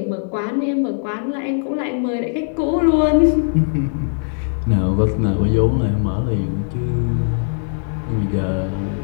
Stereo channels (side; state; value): right; silent; 66 dB below the other